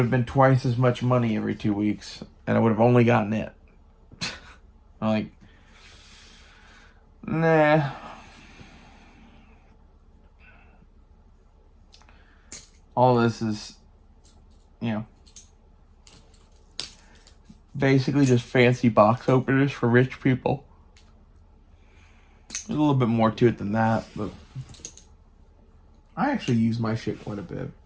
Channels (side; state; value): both; identical; correlation 1.00